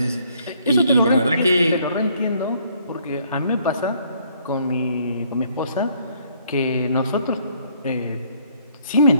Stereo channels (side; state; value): both; inverted; correlation -0.65